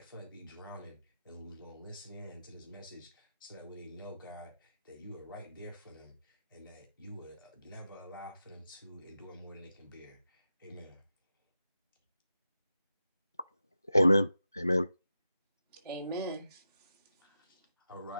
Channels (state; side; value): inverted; both; correlation -0.90